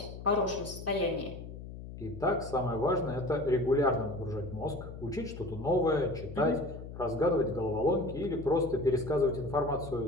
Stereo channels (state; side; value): noise; left; hum, 11 dB below the sound